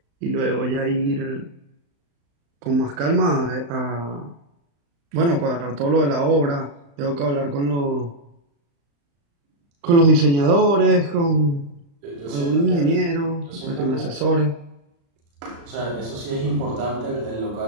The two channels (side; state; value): left; late; 35 ms